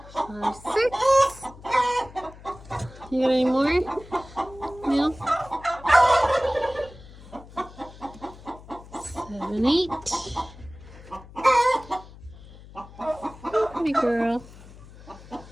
5, 6. You got any more? No? 7, 8. Pretty girl.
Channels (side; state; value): left; noise; hum, 19 dB below the sound